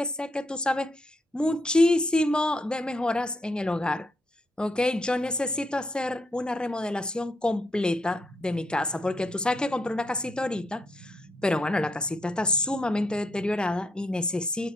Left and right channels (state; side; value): normal; both; correlation 0.76